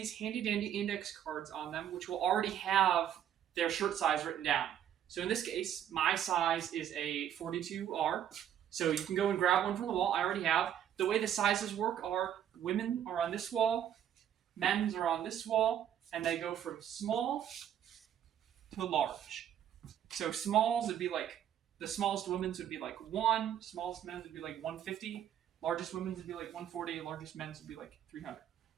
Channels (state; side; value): quieter; left; 10.1 dB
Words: handy-dandy index cards on them, which will already have their shirt size written down. So in this case, my size is a 42R. So you can go and grab one from the wall. I already have. The way the sizes work are women are on this wall, men's are on this wall, and they go from small to large. So smalls would be like, the smallest women's would be like 1, smallest men's would be like 150, largest women's would be like 140, largest men's would be like 300.